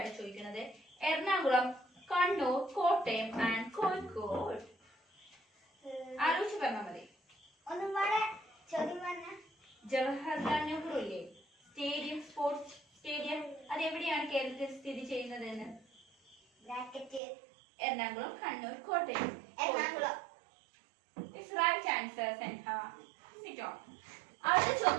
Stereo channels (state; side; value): drops out; left; at 17.2 s